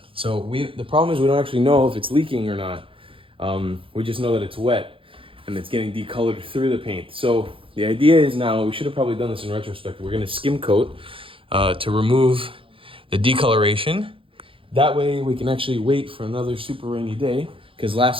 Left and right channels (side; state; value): left; late; 0.26 ms